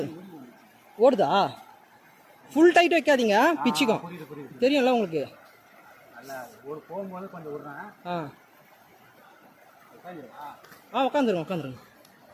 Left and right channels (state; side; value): identical; both; correlation 1.00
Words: ஓடுதா? ஃபுல் டைட் வைக்காதீங்க, பிச்சுக்கும். தெரியும்ல உங்களுக்கு. உட்காந்துருங்க.